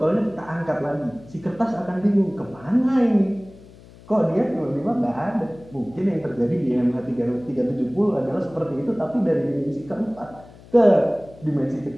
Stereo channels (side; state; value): left; noise; hum, 22 dB below the sound